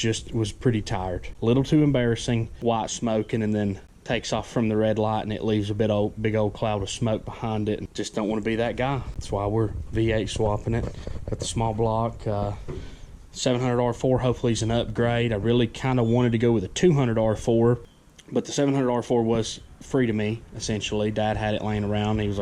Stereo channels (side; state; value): both; identical; correlation 1.00